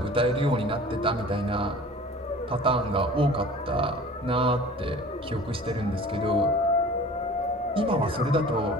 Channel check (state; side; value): normal; both; correlation 0.44